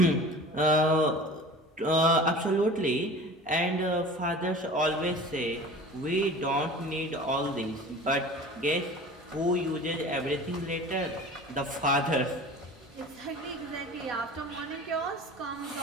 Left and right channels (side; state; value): both; normal; correlation 0.39